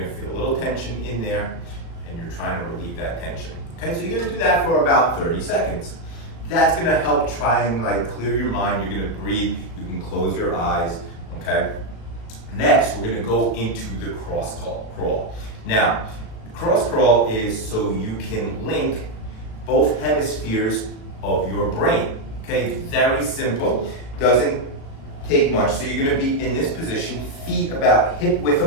feel a little tension in there, and you're trying to relieve that tension. Okay, so you're gonna do that for about 30 seconds. That's gonna help try and like clear your mind. You're gonna breathe, you can close your eyes, okay? Next, we're gonna go into the cross crawl. Now, cross crawl is so you can link both hemispheres of your brain, Okay, very simple, doesn't take much. So you're gonna be in this position, feet about hip width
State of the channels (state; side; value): late; right; 36 ms